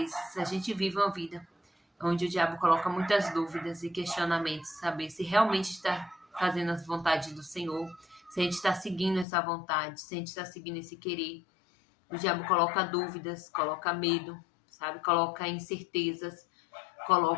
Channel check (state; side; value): drops out; right; at 9.2 s